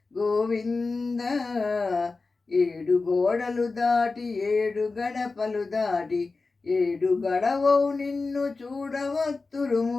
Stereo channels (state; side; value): quieter; right; 3.9 dB